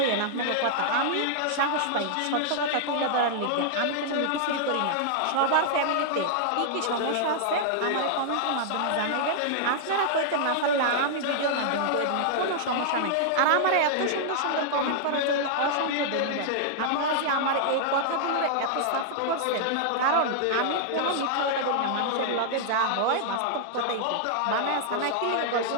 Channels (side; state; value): both; different; correlation -0.01